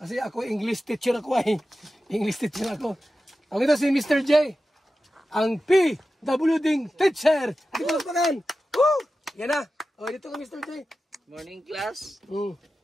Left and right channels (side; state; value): both; normal; correlation 0.93